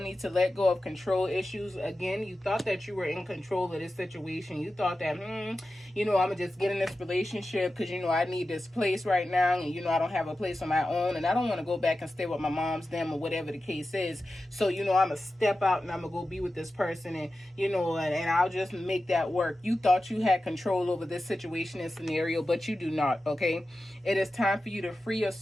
to let go of control issues. Again, you thought that you were in control of this situation. You thought that, I'm going to just get in this relationship because, I need this place right now. And, I don't have a place on my own. And I don't want to go back and stay with my mom's, them, or whatever the case is. So, I'm going to step out and I'm going to go be with this person. And, and I'll just make that work. You thought you had control over this situation and scenario, but you do not, okay? It is time for you to free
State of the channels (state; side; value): normal; both; correlation 0.93